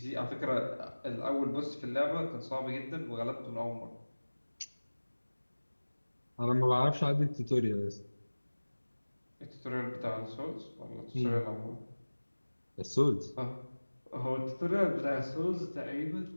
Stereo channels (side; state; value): both; inverted; correlation -1.00